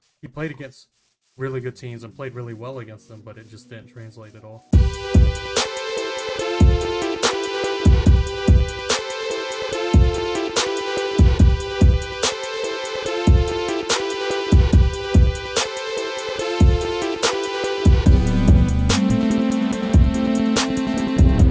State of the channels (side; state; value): both; identical; correlation 1.00